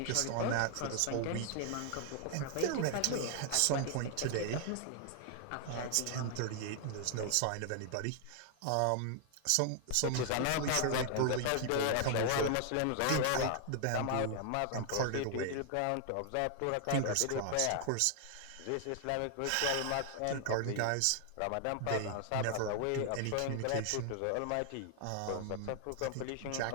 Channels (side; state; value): both; different; correlation 0.00